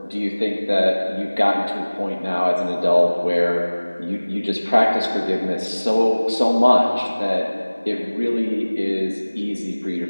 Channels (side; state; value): both; inverted; correlation -1.00